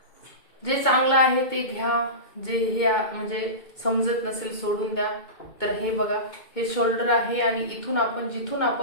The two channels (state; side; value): late; right; 2.2 ms